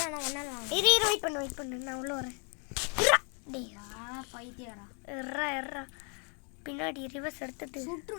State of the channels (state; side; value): quieter; right; 38.0 dB